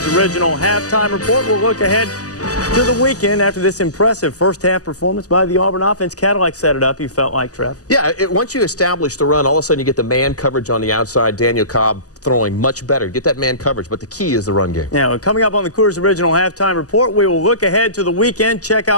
Original Halftime Report. We'll look ahead to the weekend after this impressive first-half performance by the Auburn offense. Cadillac set it up, you felt like, Trev. Yeah, once you establish the run, all of a sudden you get the man coverage on the outside. Daniel Cobb throwing much better. Get that man coverage, but the key is the run game. Now, coming up on the Coors Original Halftime Report, we will look ahead to the weekend, check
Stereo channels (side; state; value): right; late; 0.67 ms